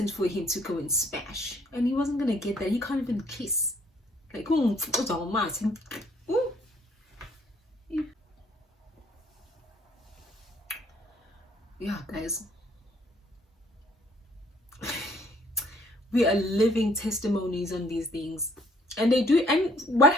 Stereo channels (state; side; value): normal; both; correlation 0.63